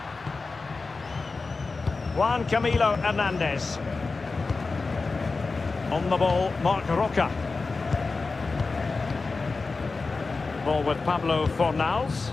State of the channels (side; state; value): right; quieter; 4.0 dB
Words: Juan Camilo Hernandez. On the ball, Marc Roca. Ball with Pablo Fornals.